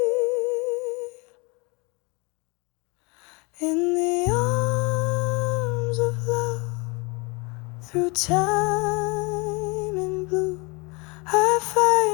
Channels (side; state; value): right; quieter; 28.5 dB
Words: In the arms of love, through time and blue, I